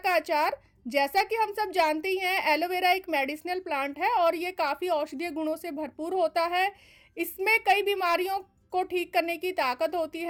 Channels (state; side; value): identical; both; correlation 1.00